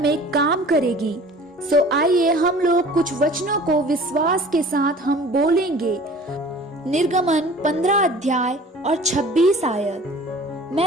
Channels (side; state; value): both; normal; correlation 0.46